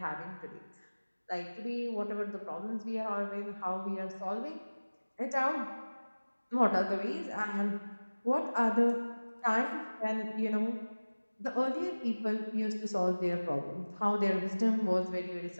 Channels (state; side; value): inverted; both; correlation -1.00